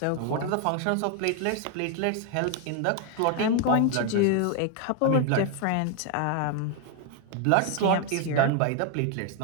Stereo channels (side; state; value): both; different; correlation 0.00